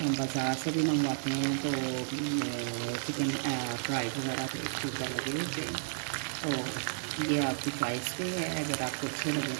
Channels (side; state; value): left; silent; 56 dB below the other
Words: बाज़ार से भी मंगवाते हैं तो चिकन फ्राई वगैरह तो इसके ऊपर लगे होते हैं। तो ये आपकी चॉइस पे है, अगर आपको अच्छे लगे